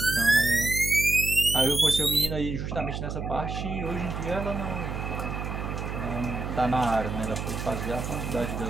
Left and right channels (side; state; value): right; noise; hum, 5 dB below the sound